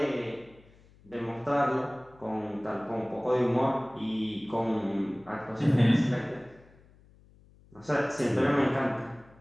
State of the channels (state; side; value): noise; left; hum, 27 dB below the sound